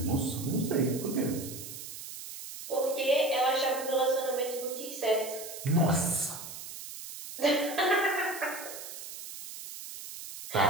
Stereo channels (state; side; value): noise; right; hiss, 11 dB below the sound